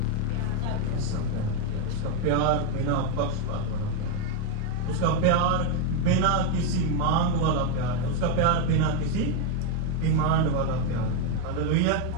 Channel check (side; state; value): both; different; correlation 0.01